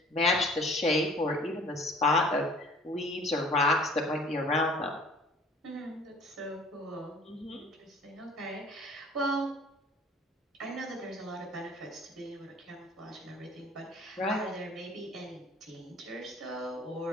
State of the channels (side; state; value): both; normal; correlation 0.50